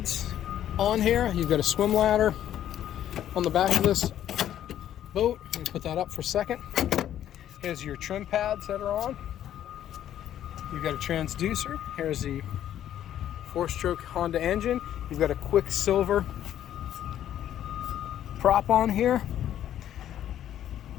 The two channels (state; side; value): quieter; right; 11.2 dB